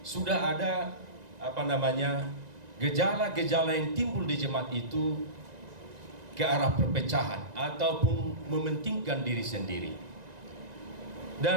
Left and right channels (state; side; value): late; left; 1.9 ms